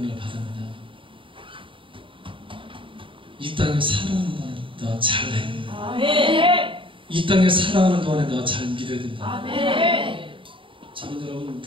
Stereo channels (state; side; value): late; left; 0.25 ms